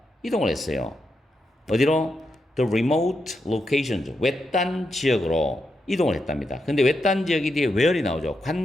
이동을 했어요. 어디로? The remote locations, 외딴 지역으로 이동을 했답니다. 근데 외딴 지역이 뒤에 where이 나오죠.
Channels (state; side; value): normal; both; correlation 0.85